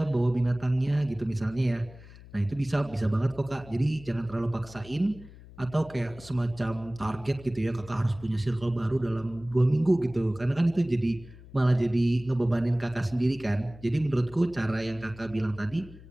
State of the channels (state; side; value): noise; left; hum, 19 dB below the sound